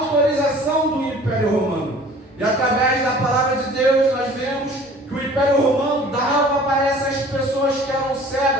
do Império Romano. E através da palavra de Deus nós vemos que o Império Romano dava para essas pessoas que eram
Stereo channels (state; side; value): normal; both; correlation 0.48